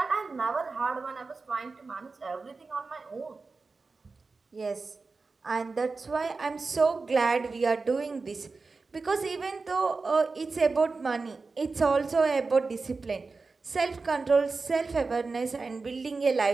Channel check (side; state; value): left; quieter; 4.1 dB